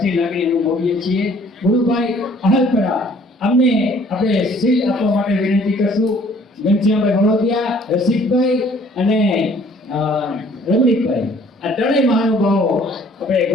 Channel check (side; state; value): both; normal; correlation 0.57